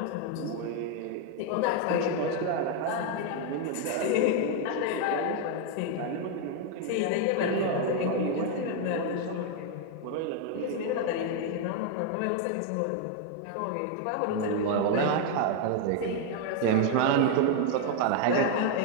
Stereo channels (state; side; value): different; both; correlation 0.00